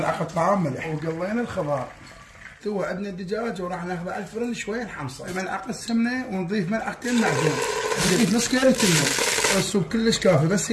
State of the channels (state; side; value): identical; both; correlation 1.00